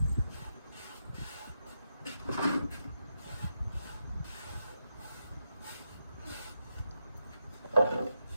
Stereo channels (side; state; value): both; inverted; correlation -0.85